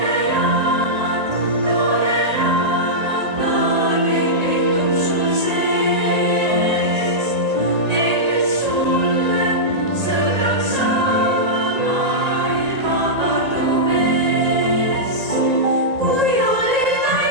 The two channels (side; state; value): left; late; 1.9 ms